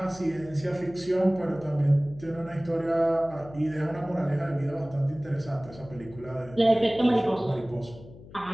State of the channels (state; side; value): noise; left; hum, 18 dB below the sound